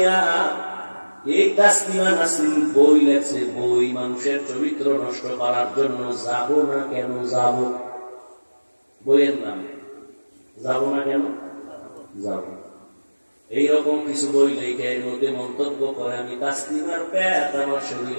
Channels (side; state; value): both; inverted; correlation -1.00